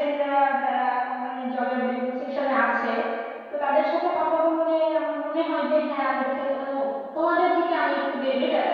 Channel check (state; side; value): identical; both; correlation 1.00